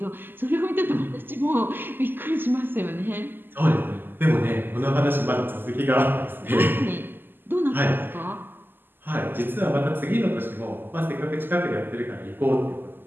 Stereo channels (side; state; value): left; late; 0.095 ms